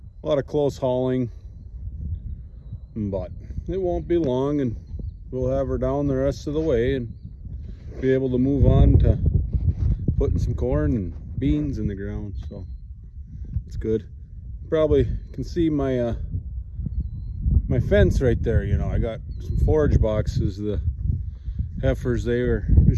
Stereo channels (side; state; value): both; identical; correlation 1.00